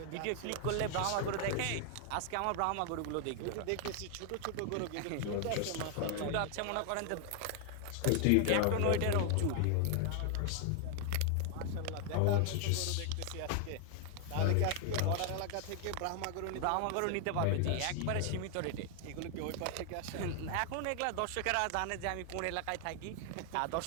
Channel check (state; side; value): different; both; correlation 0.00